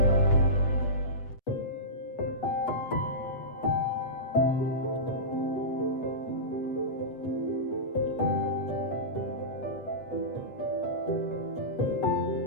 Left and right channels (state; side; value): late; right; 8.0 ms